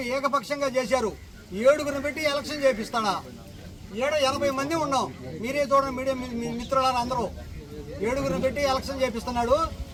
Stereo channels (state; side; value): identical; both; correlation 1.00